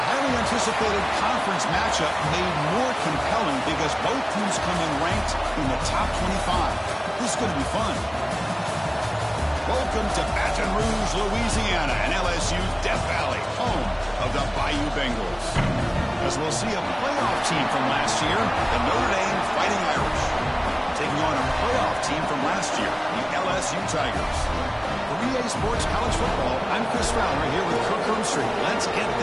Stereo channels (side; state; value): both; identical; correlation 1.00